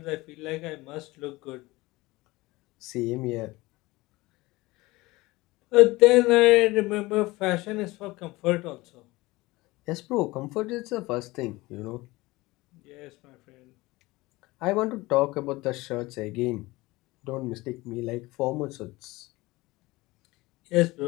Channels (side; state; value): right; quieter; 20.9 dB